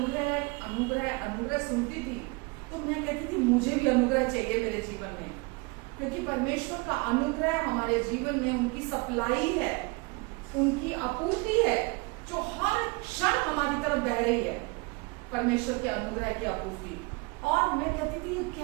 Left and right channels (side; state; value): left; quieter; 27.4 dB